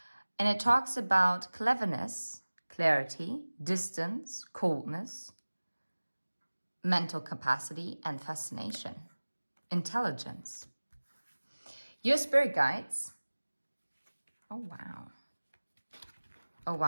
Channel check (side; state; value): both; inverted; correlation -1.00